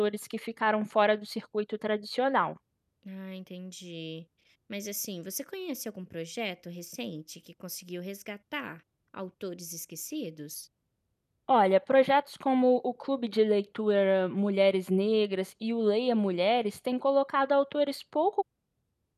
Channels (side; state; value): both; identical; correlation 1.00